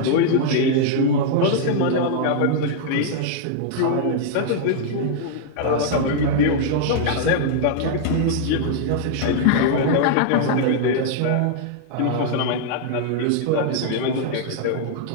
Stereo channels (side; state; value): both; different; correlation -0.01